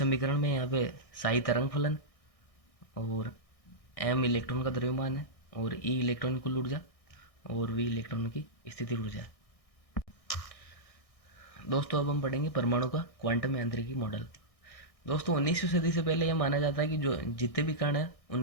में यहाँ पे साई तरंग फलन और एम इलेक्ट्रॉन का द्रव्यमान है और ई इलेक्ट्रॉन की कुल ऊर्जा और वी इलेक्ट्रॉन की स्थिति ऊर्जा है। दोस्तों, अब हम पढ़ेंगे परमाणु का क्वांटम यांत्रिकी मॉडल। दोस्तों, 19वीं सदी से पहले यह माना जाता है कि जो जितने भी कण हैं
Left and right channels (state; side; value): late; right; 1.6 ms